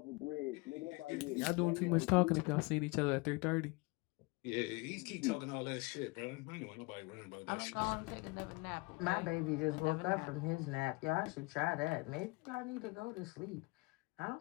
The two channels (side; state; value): right; quieter; 26.1 dB